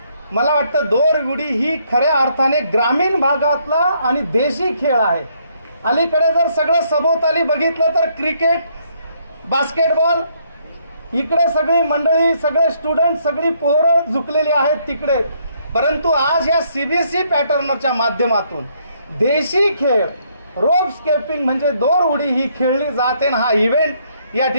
मला वाटतं दोर उडी ही खऱ्या अर्थाने ग्रामीण भागातला आणि देशी खेळ आहे। अलीकडे जर सगळं सभोवताली बघितलं तर क्रिकेट, बास्केटबॉल, इकडे सगळी मंडळी, सगळे स्टुडंट, सगळी पोरं झुकलेली आहेत तिकडे. परंतु आज या सीबीएसई पॅटर्नच्या माध्यमातून देशी खेळ, रोप स्केपिंग म्हणजे दोर उडी ही खेळली जाते. हा इव्हेंट या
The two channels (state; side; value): inverted; both; correlation -0.70